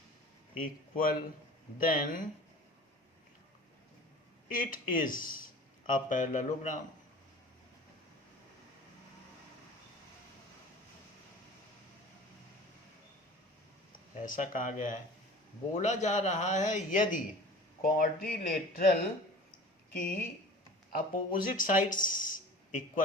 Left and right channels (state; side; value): normal; both; correlation 0.42